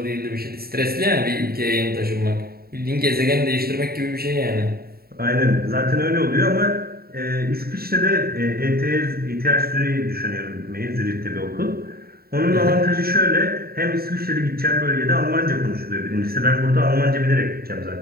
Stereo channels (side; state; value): left; late; 0.45 ms